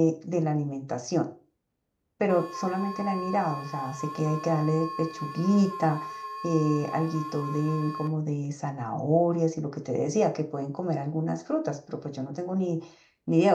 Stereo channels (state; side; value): identical; both; correlation 1.00